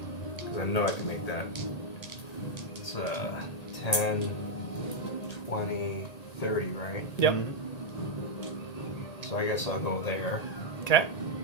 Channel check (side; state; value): right; late; 1.8 ms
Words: because I know I can make that. It's 10, 20, 30, right? Yep. So I guess I'll go there Okay.